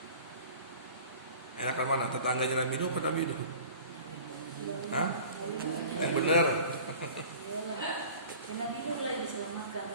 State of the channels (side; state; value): both; inverted; correlation -0.43